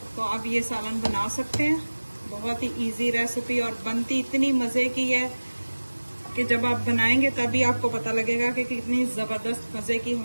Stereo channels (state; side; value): inverted; both; correlation -1.00